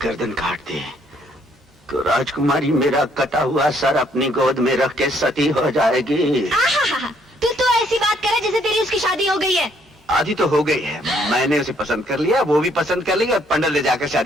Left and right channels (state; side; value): normal; both; correlation 0.67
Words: गर्दन काट दी तो राजकुमारी मेरा कटा हुआ सर अपनी गोद में रख के सती हो जाएगी। तू तो ऐसी बात करे जैसे तेरी उसकी शादी हो गई है। आधी तो हो गई है। मैंने उसे पसंद कर लिया, वो भी पसंद कर लिया और पंडित ले जाकर